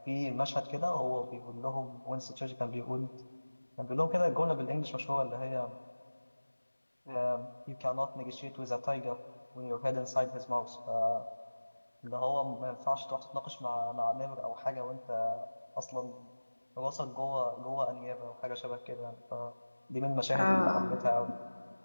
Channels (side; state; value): both; inverted; correlation -1.00